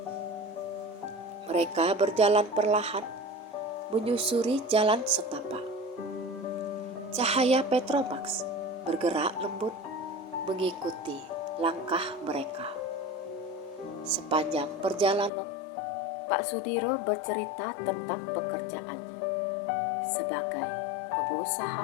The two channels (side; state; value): right; drops out; at 15.3 s